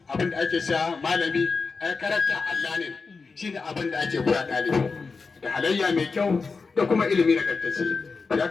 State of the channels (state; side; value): quieter; right; 4.5 dB